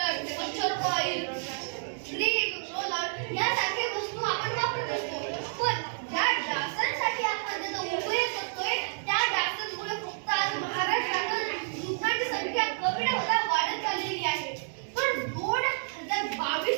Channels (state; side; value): silent; left; digital silence